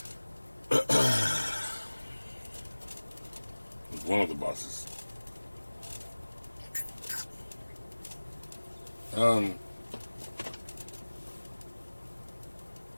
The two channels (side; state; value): both; inverted; correlation -1.00